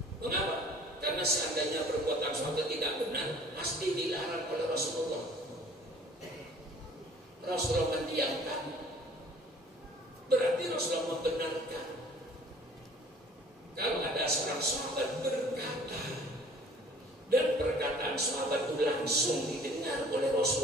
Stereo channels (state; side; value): normal; both; correlation 0.52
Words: Mengapa? Karena seandainya perbuatan sahabat tidak benar, pasti dilarang oleh Rasulullah. Rasulullah mendiamkan, berarti Rasulullah membenarkan. Kalau ada seorang sahabat berkata, dan perkataan sahabat itu langsung didengar oleh